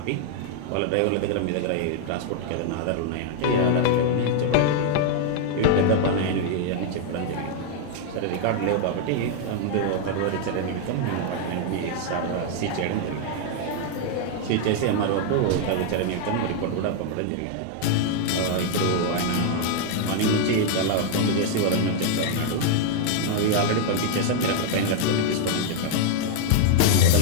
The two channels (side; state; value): both; different; correlation 0.00